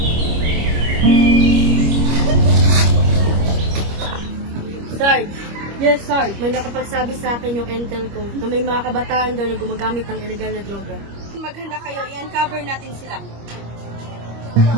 Sarge, Yes, sir. May nakapagsabi sa akin yung intel ko na may mga kabataan daw na gumagamit ng illegal na droga. Maghanda kayo, i-uncover natin sila.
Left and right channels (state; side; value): late; left; 25 ms